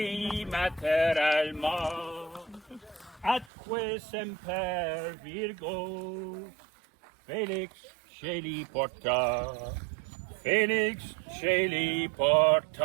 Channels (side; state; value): left; drops out; at 3.5 s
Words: mater alma, atque semper Virgo, Felix Shelley Porta, Felix Shelley